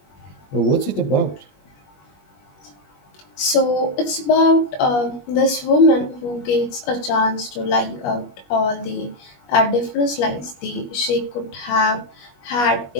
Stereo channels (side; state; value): right; late; 21 ms